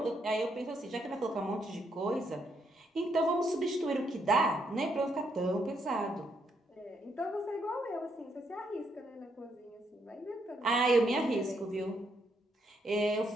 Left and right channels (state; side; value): normal; both; correlation 0.75